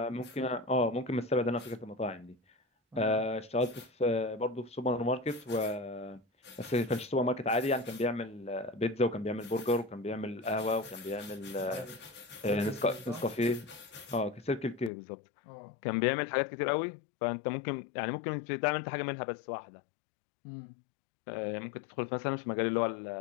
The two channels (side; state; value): right; drops out; at 14.9 s